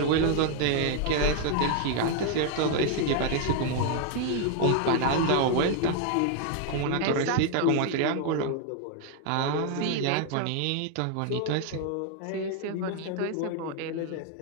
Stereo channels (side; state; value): both; different; correlation 0.00